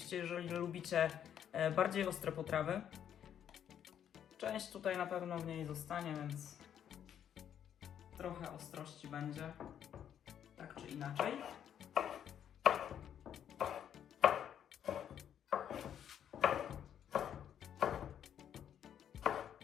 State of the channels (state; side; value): quieter; right; 9.4 dB